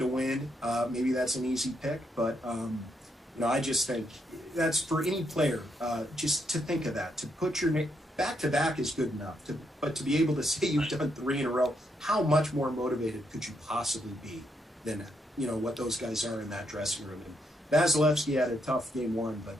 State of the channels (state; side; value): normal; both; correlation 0.78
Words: win. Maybe that's an easy pick, but, I just think that's for any player, just to think of that, to put your name back-to-back is good enough. But to be able to say you've done 3 in a row, how much more motivated could you possibly be than what those guys are in that dressing room? And Vasilevsky had a tough Game 1, but